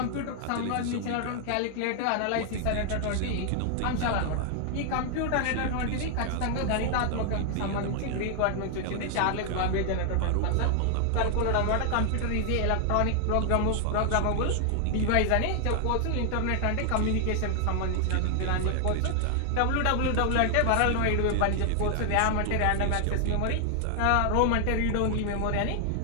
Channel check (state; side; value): different; both; correlation 0.00